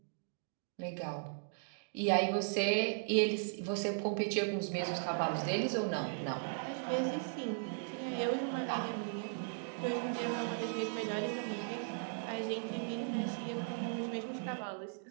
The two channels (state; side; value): silent; left; digital silence